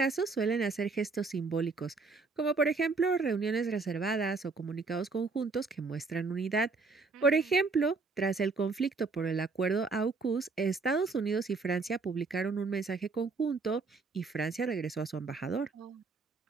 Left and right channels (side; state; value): left; quieter; 4.2 dB